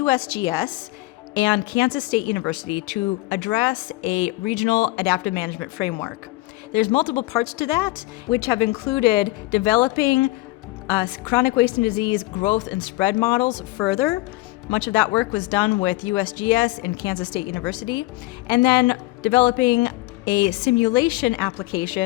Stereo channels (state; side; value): quieter; right; 19.6 dB